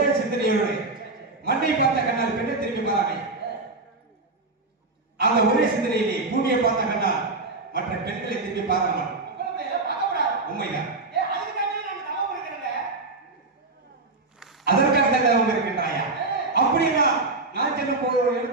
சிந்தனையோடு மண்ணை பார்த்த கண்ணால் பெண்ணை திரும்பி பாராமை அந்த ஒரே சிந்தனையிலே பூமியை பார்த்த கண்ணால் மற்ற பெண்களை திரும்பி பாராமல் உண்மைதான் அதற்காக தான் அவங்க இருக்கின்றாயா அப்படின்னா நான் செல்லும் போது ஒரு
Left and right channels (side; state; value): left; quieter; 3.4 dB